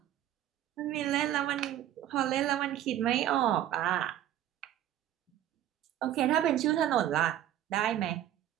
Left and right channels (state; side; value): quieter; left; 11.8 dB